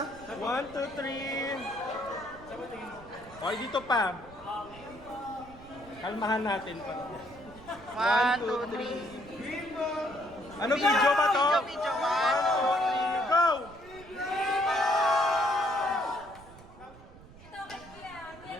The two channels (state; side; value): noise; right; rumble, 20 dB below the sound